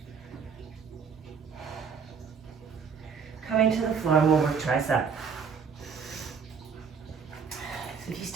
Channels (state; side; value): quieter; left; 6.1 dB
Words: Coming to the floor, and we'll work tricep. So if you